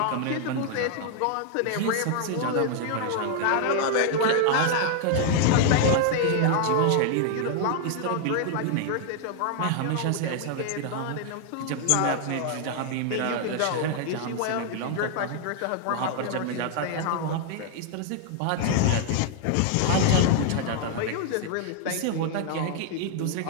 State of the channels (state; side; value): different; both; correlation 0.00